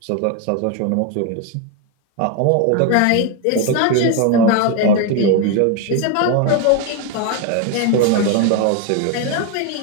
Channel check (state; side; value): different; both; correlation 0.01